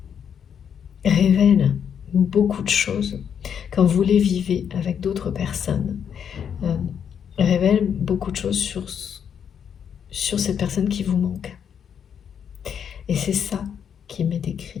révèlent beaucoup de choses. Quand vous les vivez avec d'autres personnes, révèlent beaucoup de choses sur cette personne qui vous manque. Et c'est ça qui m'est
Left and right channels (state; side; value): quieter; right; 8.0 dB